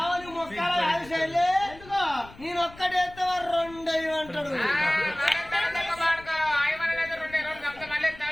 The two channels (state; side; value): noise; left; rumble, 20 dB below the sound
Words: మొక్కలు ఆశలే నేను ఒక్కడేస్తే 2 అంటాడు